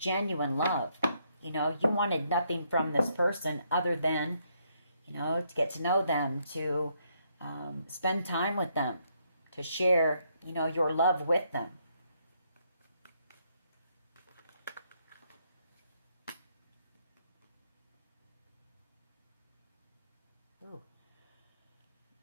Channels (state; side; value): inverted; both; correlation -0.74